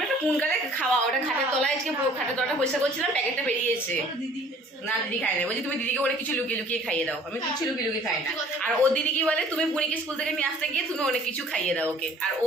কোন কালে খাওয়া, ওটা খাটের তলায় আজকে পুরো খাটের তলাটা পরিষ্কার করছিলাম, প্যাকেটটা বেরিয়েছে। ওর দিদি খেয়েছে। না দিদি খায় না, বলছি তুমি দিদিকে অনেক কিছু লুকিয়ে লুকিয়ে খাইয়ে দাও। আমি কিছু লুকিয়ে লুকিয়ে খাই না। সত্যি কথা। আর ও দিদি কি বলে, তুমি বুনিকে স্কুল থেকে নিয়ে আসতে গিয়ে তুমি অনেক কিছু খাইয়ে দাও ওকে। আর ও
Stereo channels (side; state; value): both; normal; correlation 0.53